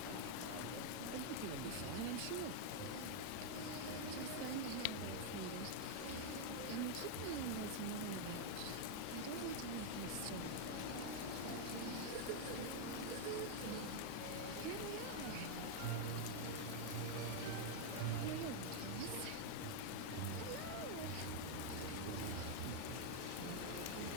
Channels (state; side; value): different; both; correlation 0.00